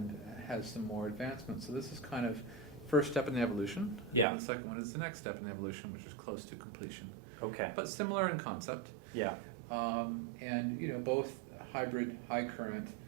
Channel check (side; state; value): left; drops out; at 4.2 s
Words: has some more advancements. So this is kind of first step in the evolution. Yeah. And the second one is the next step in the evolution, which is close to completion, Okay. but similar in concept. Yeah. And both hybrid, high current,